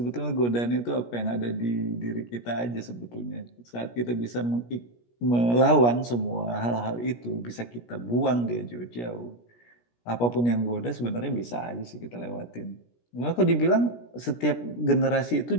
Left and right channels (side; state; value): right; late; 17 ms